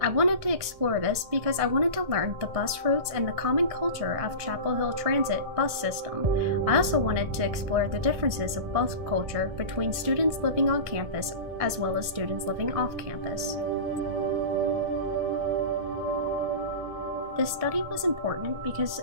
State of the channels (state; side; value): late; left; 1.6 ms